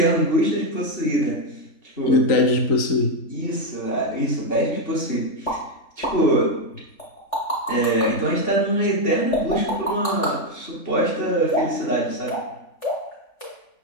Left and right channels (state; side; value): late; right; 3.5 ms